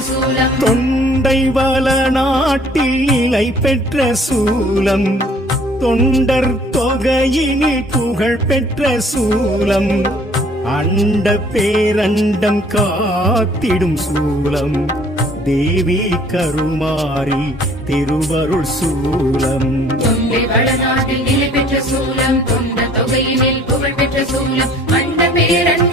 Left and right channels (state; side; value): normal; both; correlation 0.56